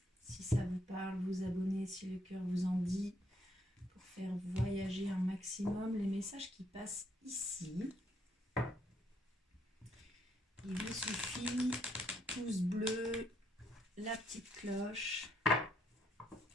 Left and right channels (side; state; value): both; normal; correlation 0.72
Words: si ça vous parle, vous abonner si le cœur vous en dit, pour faire voyager un maximum les messages qui passent ici. Il vous suffit, pouce bleu, la petite cloche